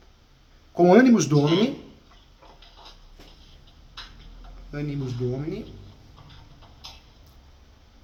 com animus domini,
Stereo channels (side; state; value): both; identical; correlation 1.00